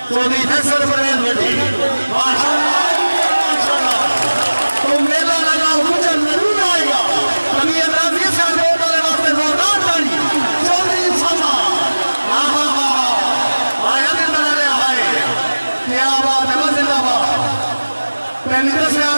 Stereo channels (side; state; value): both; inverted; correlation -1.00